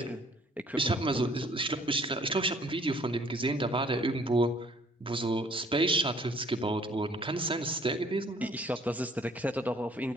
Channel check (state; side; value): normal; both; correlation 0.58